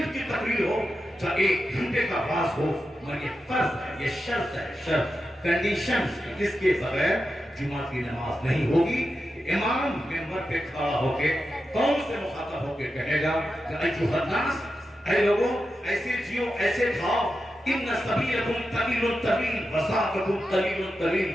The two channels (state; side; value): normal; both; correlation 0.90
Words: کی تقریر ہو، چاہے 1 گھنٹے کا واز ہو، مگر یہ فرض ہے، یہ شرط ہے، شرط کنڈیشن، جس کے بغیر جمعہ کی نماز نہیں ہوگی۔ امام ممبر پہ کھڑا ہو کے قوم سے مخاطب ہو کے کہے گا کہ ایھا الناس، اے لوگوں، ایسے جیو، ایسے کھاؤ، ان سبیلکم طویل طویل وسعکم طویل طویل،